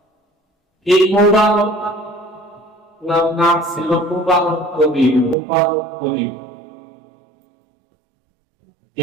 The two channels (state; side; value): drops out; left; at 5.4 s